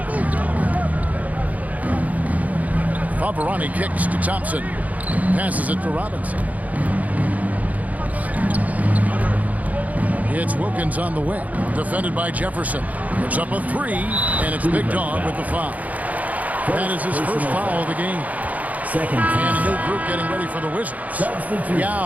Favarani kicks to Thompson. Passes it to Robinson. It's Wilkins on the wing. Defended by Jefferson. Puts up a 3, and it's Big Dog with the foul. That is his first foul of the game. Second And a new group getting ready for the Wizards.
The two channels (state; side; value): late; left; 0.075 ms